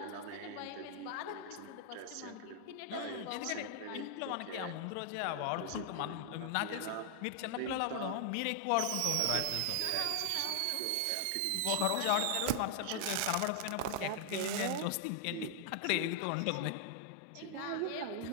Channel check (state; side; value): different; both; correlation 0.00